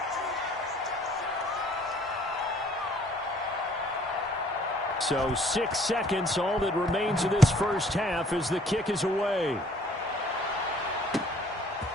So 6 seconds, all that remains of this first half as the kick is away.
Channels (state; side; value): normal; both; correlation 0.58